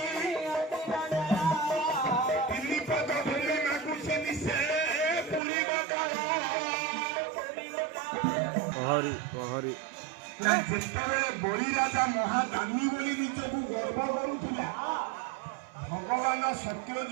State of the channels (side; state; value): left; drops out; at 5.4 s